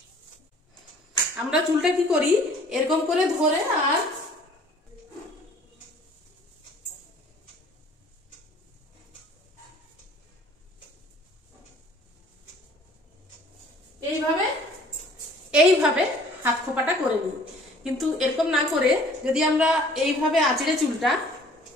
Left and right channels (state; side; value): normal; both; correlation 0.53